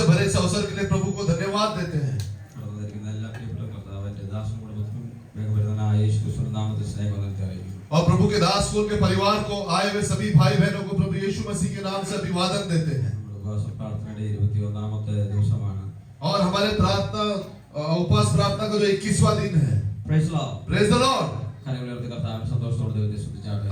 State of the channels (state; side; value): identical; both; correlation 1.00